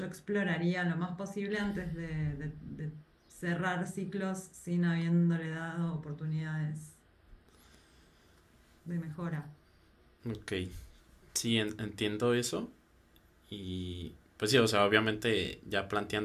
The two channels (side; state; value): both; identical; correlation 1.00